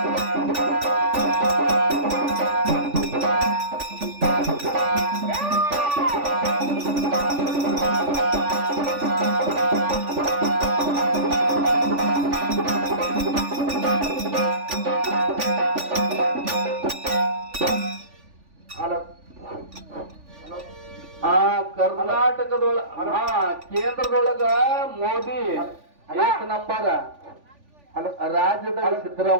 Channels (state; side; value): late; left; 3.5 ms